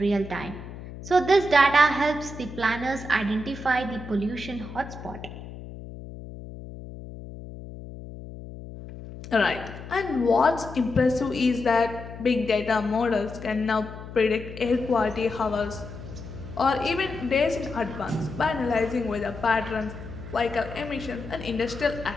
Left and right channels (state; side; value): noise; left; hum, 13 dB below the sound